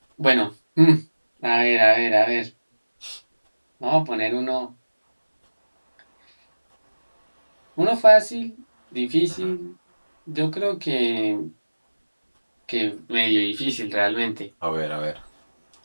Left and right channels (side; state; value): both; inverted; correlation -1.00